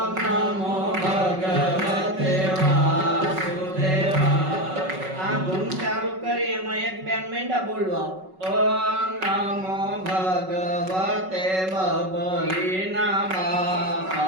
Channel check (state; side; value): late; left; 5.3 ms